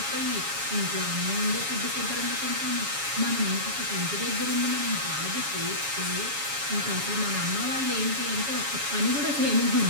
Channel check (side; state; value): left; late; 7.2 ms